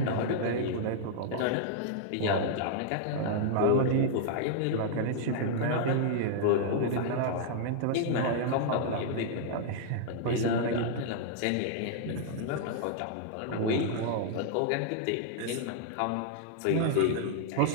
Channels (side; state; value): both; different; correlation -0.01